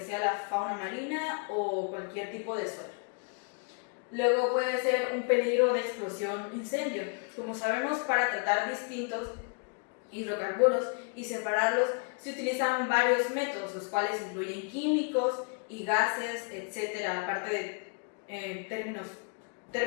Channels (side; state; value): right; quieter; 39.1 dB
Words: sea la fauna marina o cualquier tipo de suelo. Luego puede ser un peligro de explosión incendio. Como sabemos, para tratar distintos hidrocarburos y separarlos se utilizan varios métodos, los cuales incluyen químicos y gases, etcétera, aparte de términos